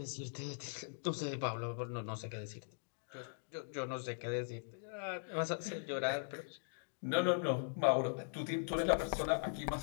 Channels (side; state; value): right; silent; digital silence